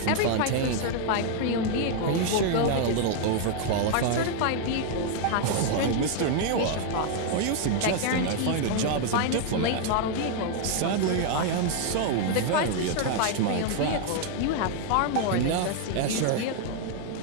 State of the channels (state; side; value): different; both; correlation 0.00